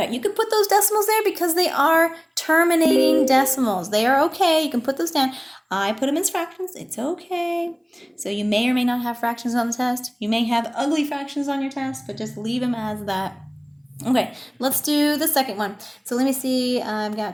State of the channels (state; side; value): identical; both; correlation 1.00